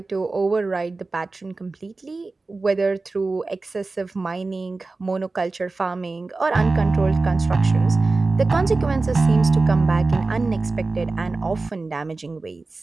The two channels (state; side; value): quieter; left; 3.6 dB